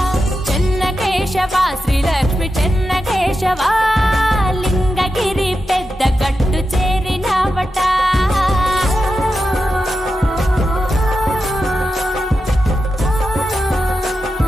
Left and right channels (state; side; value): normal; both; correlation 0.90